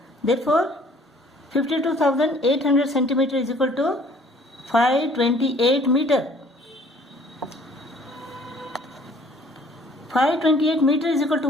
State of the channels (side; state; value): both; normal; correlation 0.56